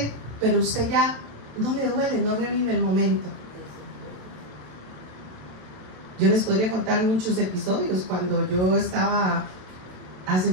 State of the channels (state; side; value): late; left; 27 ms